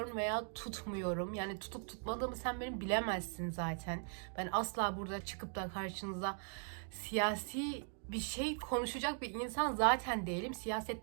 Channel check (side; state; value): left; silent; 51 dB below the other